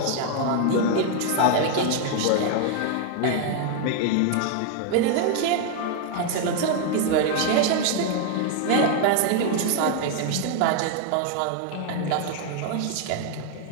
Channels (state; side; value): different; both; correlation 0.00